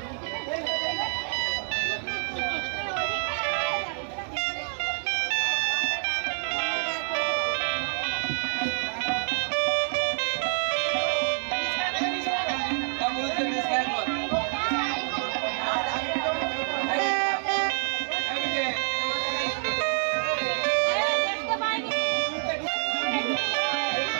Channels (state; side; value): silent; left; digital silence